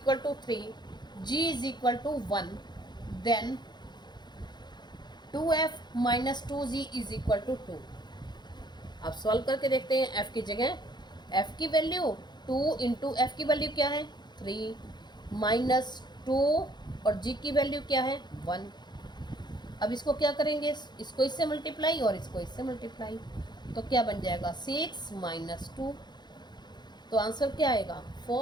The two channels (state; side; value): late; right; 0.21 ms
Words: to 3 g is equal to 1 then 2f minus 2g is equal to 2। अब सॉल्व करके देखते हैं। f की जगह f की वैल्यू 2 इंटू एफ की वैल्यू क्या है 3 माइनस 2 और g की वैल्यू क्या है 1। अब इसको क्या करेंगे, इसको इससे मल्टीप्लाई और इसको इससे मल्टीप्लाई, तो क्या बन जाएगा 6 माइनस 2, तो आंसर क्या आएगा